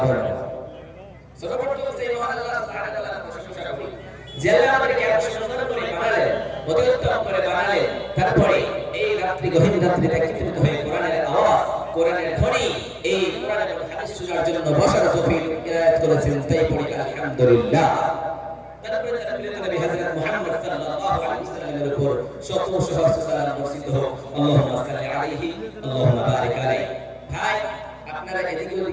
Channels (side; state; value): both; identical; correlation 1.00